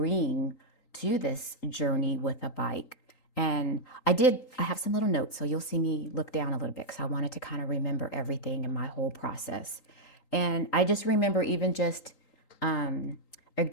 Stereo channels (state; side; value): late; right; 3.8 ms